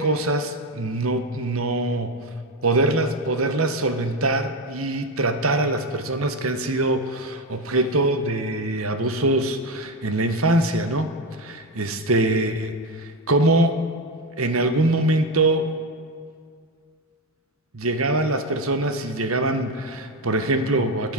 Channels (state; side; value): normal; both; correlation 0.14